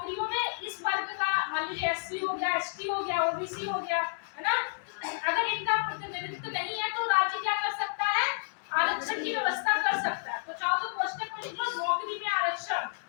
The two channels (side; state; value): right; silent; digital silence